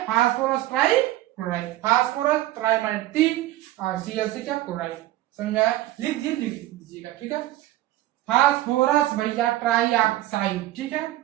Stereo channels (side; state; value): left; quieter; 15.4 dB